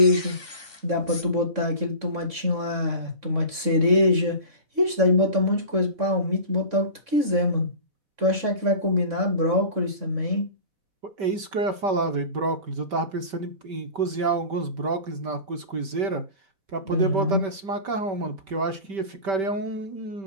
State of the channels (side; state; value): left; late; 3.6 ms